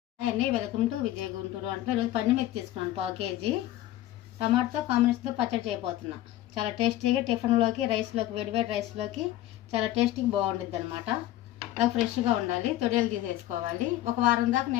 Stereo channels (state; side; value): quieter; right; 14.1 dB